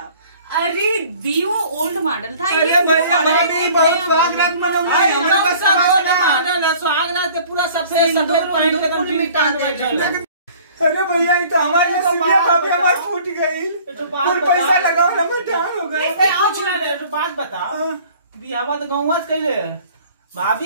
अरे दी वो ओल्ड मॉडल था, अरे ये भाई new model है। नहीं, बहुत स्वागत मनाऊंगा। हमरा का स्वागत है पूरा सबसे सफेद पहन के एकदम मिटा दे। अरे भैया ये तो हमारी नसीबिया भाभी हमारी फूट गई। कुल पैसा लगाओ ना मटान हो गया। अरे कुछ ना रे, तू बात बता। बियाह तो गाँव से कइले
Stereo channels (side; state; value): both; inverted; correlation -0.51